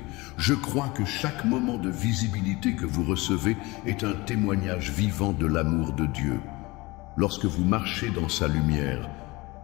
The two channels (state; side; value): quieter; right; 22.8 dB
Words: Je crois que chaque moment de visibilité que vous recevez est un témoignage vivant de l'amour de Dieu. Lorsque vous marchez dans sa lumière,